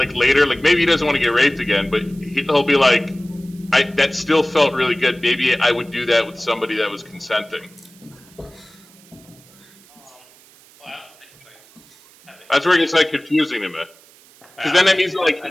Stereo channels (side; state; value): right; noise; hiss, 26 dB below the sound